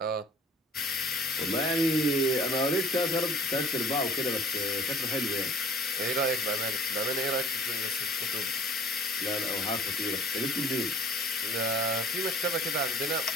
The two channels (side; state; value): both; normal; correlation 0.51